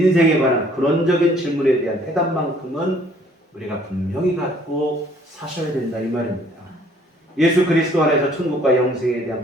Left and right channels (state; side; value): normal; both; correlation 0.60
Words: 관한 근원적인 질문에 대한 해답만큼은 우리가 분명히 갖고 사셔야 된다 이 말입니다. 예수 그리스도 안에서 천국과 영생에 대한